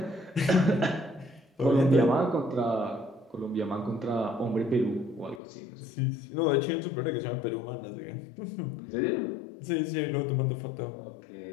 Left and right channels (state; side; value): drops out; right; at 5.4 s